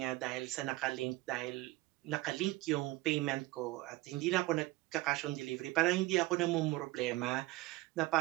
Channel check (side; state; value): left; quieter; 19.5 dB